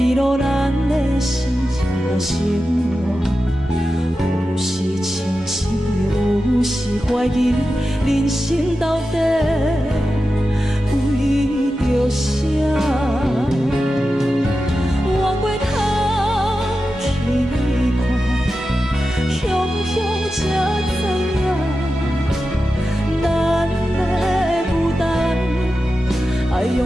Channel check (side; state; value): both; normal; correlation 0.92